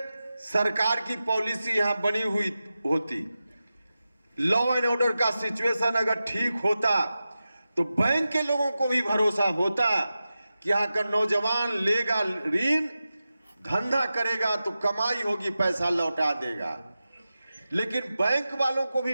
सरकार की पॉलिसी यहां बनी हुई होती, लॉ एंड ऑर्डर का सिचुएशन अगर ठीक होता, तो बैंक के लोगों को भी भरोसा होता कि यहां का नौजवान लेगा ऋण, धंधा करेगा तो कमाई होगी, पैसा लौटा देगा। लेकिन बैंक वालों को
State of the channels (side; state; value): both; inverted; correlation -0.93